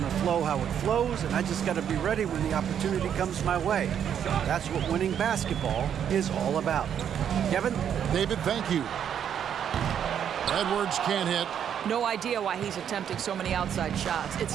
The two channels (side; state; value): left; quieter; 8.8 dB